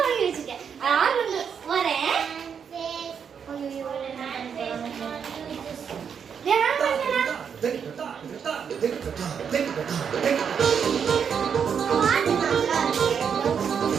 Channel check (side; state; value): left; quieter; 7.1 dB